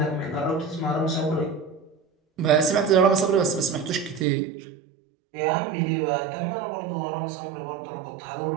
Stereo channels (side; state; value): left; drops out; at 4.2 s